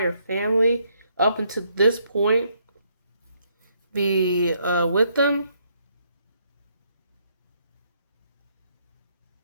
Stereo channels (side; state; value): both; inverted; correlation -0.72